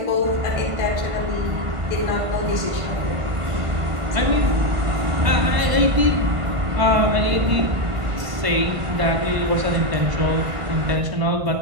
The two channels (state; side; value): late; left; 1.5 ms